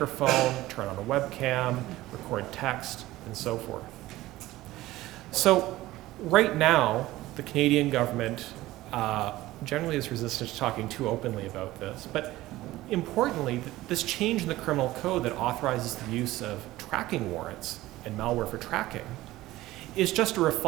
turn on a webcam, record text, and so forth. So right now, the Canadian government generally is resistant to talking too openly about this, but importantly, this change in the criminal code that authorizes the use of tracking warrants and malware for tracking is just a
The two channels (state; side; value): quieter; left; 17.0 dB